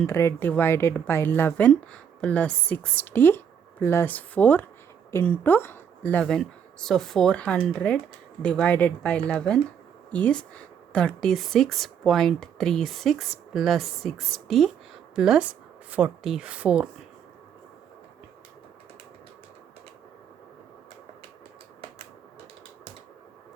divided by 11 plus 60 plus 4 into 11. So 400 divided by 11 is 36.36 plus 60 plus 44.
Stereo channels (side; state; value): left; quieter; 7.9 dB